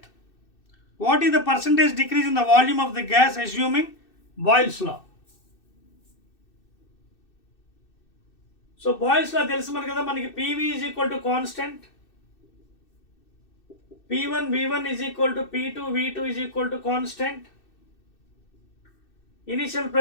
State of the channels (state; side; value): late; right; 2.6 ms